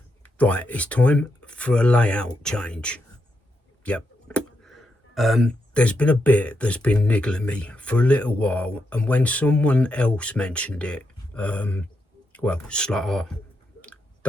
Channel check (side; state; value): both; normal; correlation 0.83